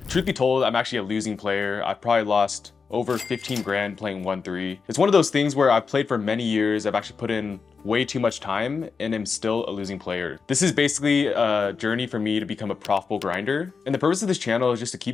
Truth be told, I'm actually a losing player. I've probably lost over 15 grand playing 1-3. It's one of those things where I've played for many years, I've actually put in way too much time, and am still a losing player. This is basically a journey for me to become a profitable grinder. And the purpose of this channel is just to keep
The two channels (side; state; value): right; quieter; 5.2 dB